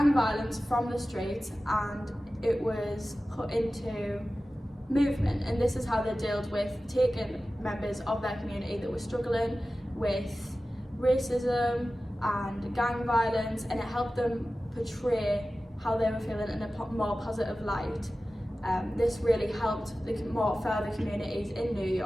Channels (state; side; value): normal; both; correlation 0.95